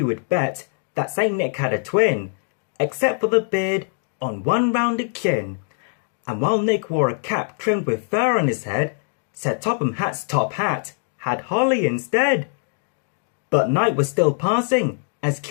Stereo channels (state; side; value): silent; right; digital silence